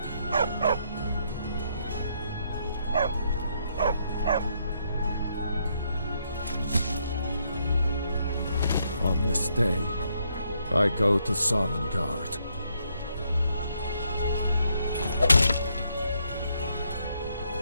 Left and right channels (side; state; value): both; inverted; correlation -0.75